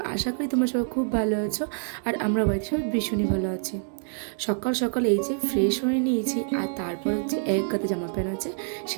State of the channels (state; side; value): silent; left; digital silence